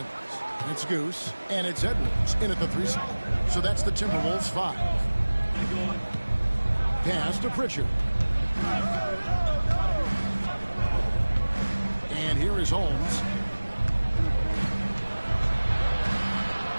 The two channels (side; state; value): both; inverted; correlation -1.00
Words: It's Goose. And it's Edwards in at the 3 spot. So that's the Timberwolves 5. Pass to Pritchard. And here is Holmes.